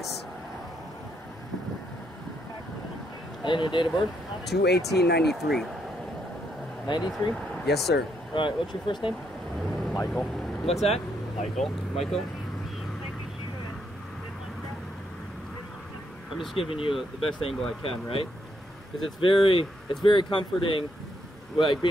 And your date of birth? 2/18/93. 93? Yes, sir. All right, what's your first name? Michael. What's that? Michael. Michael? I'm just giving you the best angle I can, right? Because it's very comforting, like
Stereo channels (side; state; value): both; normal; correlation 0.76